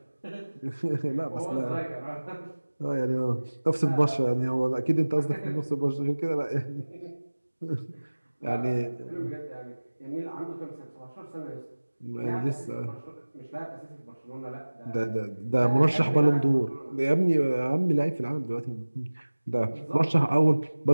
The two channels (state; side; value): inverted; both; correlation -1.00